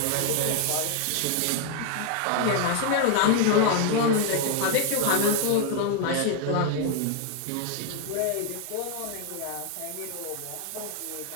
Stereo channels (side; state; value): both; different; correlation 0.00